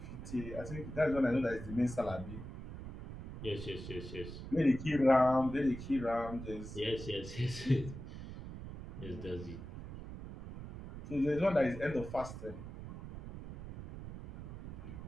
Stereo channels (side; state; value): right; noise; rumble, 10 dB below the sound